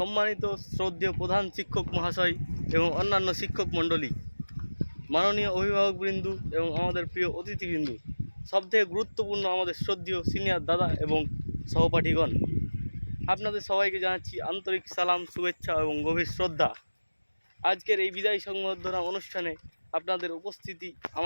শ্রদ্ধেয় প্রধান শিক্ষক মহাশয় এবং অন্যান্য শিক্ষক মণ্ডলী, মাননীয় অভিভাবকবৃন্দ এবং আমাদের প্রিয় অতিথিবৃন্দ, সবথেকে গুরুত্বপূর্ণ আমাদের শ্রদ্ধেয় সিনিয়র দাদা এবং সহপাঠীগণ, আপনাদের সবাইকে জানাচ্ছি আন্তরিক সালাম, শুভেচ্ছা এবং গভীর শ্রদ্ধা। আজকের এই বিদায় সংবর্ধনা অনুষ্ঠানে আপনাদের উপস্থিতি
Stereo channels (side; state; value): both; inverted; correlation -1.00